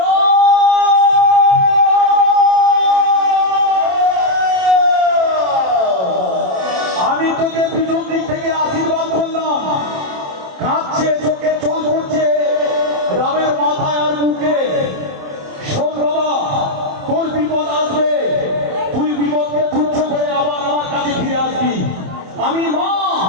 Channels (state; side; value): late; left; 27 ms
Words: আমি তোকে পিছন দিক থেকে আশীর্বাদ করলাম। কাঁদছে, চোখে জল পড়ছে রামের মাথায় আর মুখে। শোন বাবা, তোর বিপদ আসবে, তুই বিপদকে তুচ্ছ করে আবার আমার কাছে ফিরে আসবি। আমি মা,